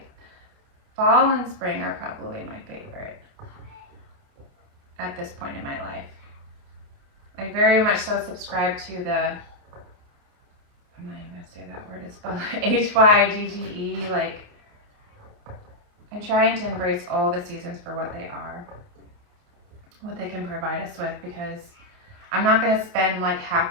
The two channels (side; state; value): left; late; 29 ms